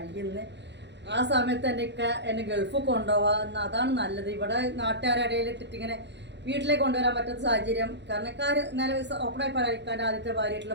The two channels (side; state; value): left; late; 0.51 ms